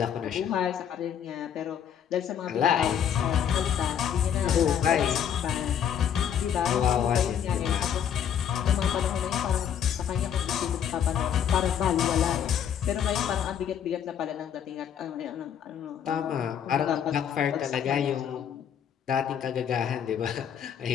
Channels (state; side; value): quieter; right; 8.8 dB